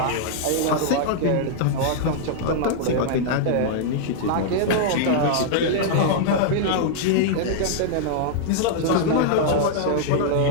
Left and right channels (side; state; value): both; different; correlation -0.01